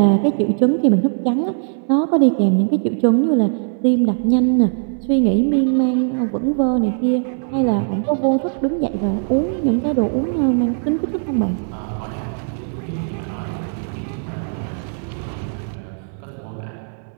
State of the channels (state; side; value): silent; left; 62 dB below the other